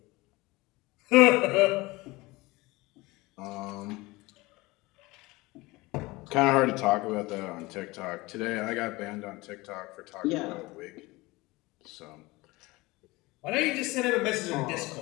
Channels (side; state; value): right; quieter; 21.7 dB